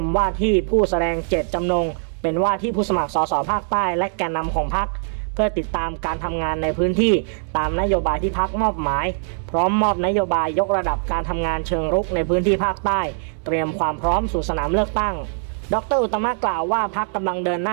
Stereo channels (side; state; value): left; silent; digital silence